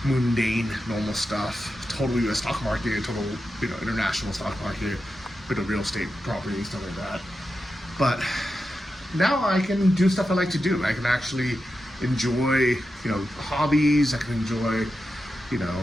mundane, normal stuff. Total US stock market, total, you know, international stock market, bit of real estate property, stuff like that. But now I can do stuff I like to do. I can actually enjoy, you know, hobbies. I can enjoy, you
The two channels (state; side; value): normal; both; correlation 0.90